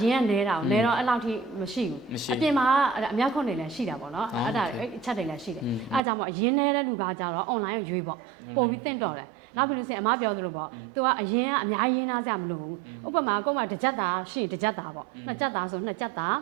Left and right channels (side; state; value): left; drops out; at 6.0 s